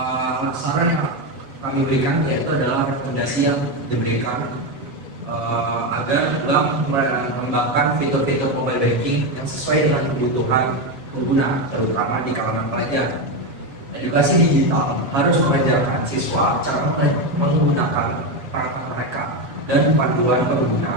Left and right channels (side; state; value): left; late; 7.6 ms